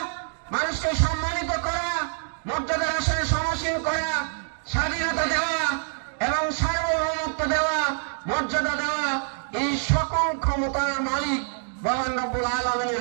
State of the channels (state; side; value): silent; left; digital silence